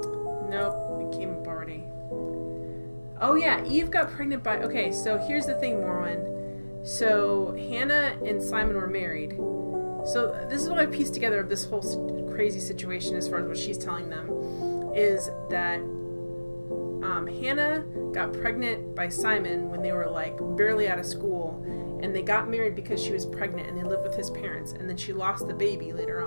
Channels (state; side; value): inverted; both; correlation -1.00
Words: Oh yeah, Eve got pregnant by... Okay, so here's the thing, Morwen. So Hannah and Simon were married. So this is what I pieced together of this whole crazy situation as far as what she's telling them. Is that Hannah got pregnant by Simon when they were like barely out of school. And they got married because she was pregnant and they lived with his parents. And then she lost the baby later